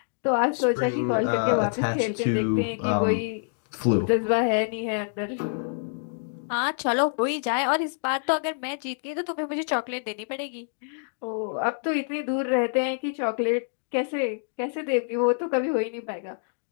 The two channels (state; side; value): silent; right; digital silence